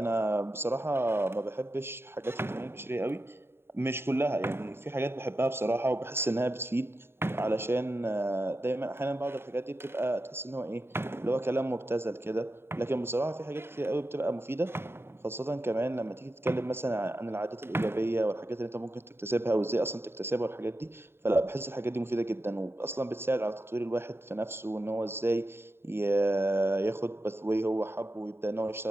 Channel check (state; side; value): late; left; 0.11 ms